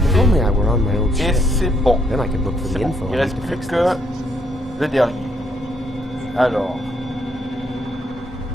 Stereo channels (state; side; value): normal; both; correlation 0.71